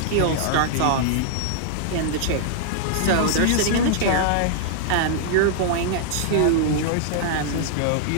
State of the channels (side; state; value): both; different; correlation -0.01